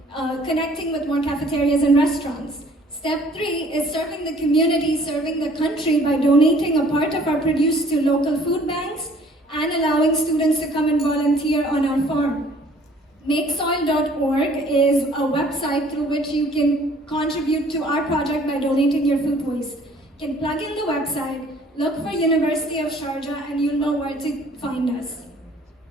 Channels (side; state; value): both; normal; correlation 0.56